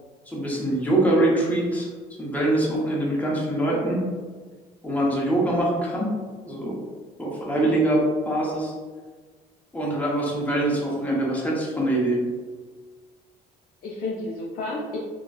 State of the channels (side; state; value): both; normal; correlation 0.57